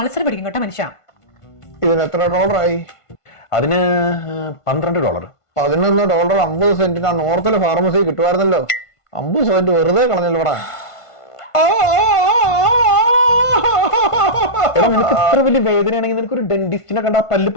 പിടിക്കും കേട്ടോ മനുഷ്യ. ഇതിന് എത്ര ഡോളറായി? അതിന് $12. $11 50 സെന്റിന് ആ നോർത്തിലെ ഫാർമസി കിട്ടുമായിരുന്നല്ലോ. 50 സെന്റ് വെറുതെ കളഞ്ഞല്ലോ ഇവിടെ. നിനക്ക് ഇത്ര വലിയ വേദനയാണെങ്കിൽ നിനക്ക് ഒരു ഡെന്റിസ്റ്റിനെ കണ്ടാ പല്ല്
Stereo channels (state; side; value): late; right; 1.5 ms